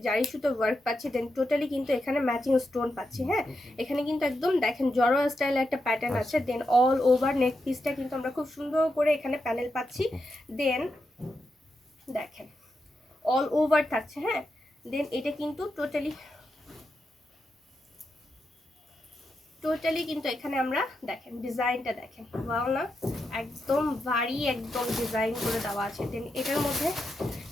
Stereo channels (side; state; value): both; normal; correlation 0.86